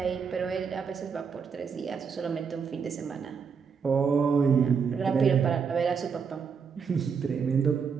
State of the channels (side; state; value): left; quieter; 6.1 dB